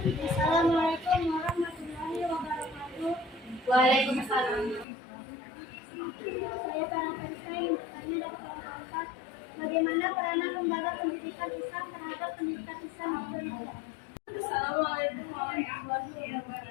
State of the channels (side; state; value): right; drops out; at 4.9 s